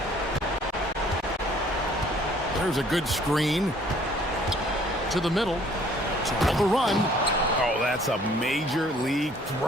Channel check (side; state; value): both; normal; correlation 0.59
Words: There's a good screen. To the middle. To the run. Oh, that's a major league